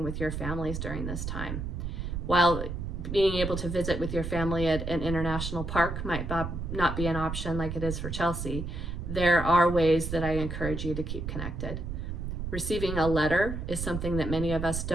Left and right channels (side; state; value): right; noise; rumble, 5 dB below the sound